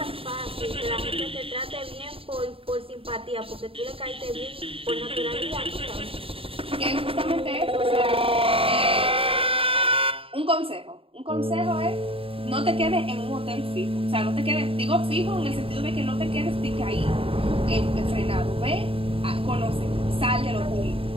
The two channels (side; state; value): left; late; 0.27 ms